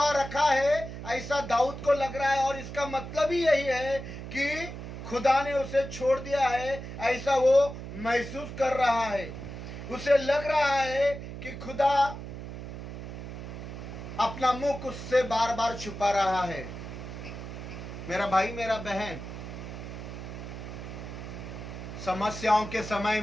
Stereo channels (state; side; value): noise; right; hum, 9 dB below the sound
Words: रखा है ऐसा दाऊद को लग रहा है, और इसका मतलब ही यही है कि खुदा ने उसे छोड़ दिया है ऐसा वो महसूस कर रहा है। उसे लग रहा है कि खुदा अपना मुख उससे बार बार छुपा रहा है। मेरा भाई मेरा बहन, समस्याओं के समय